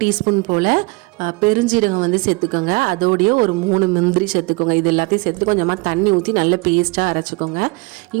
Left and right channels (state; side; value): quieter; left; 26.7 dB